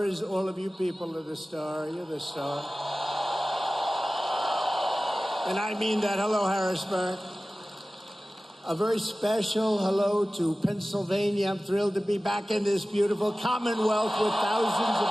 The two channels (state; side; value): normal; both; correlation 0.97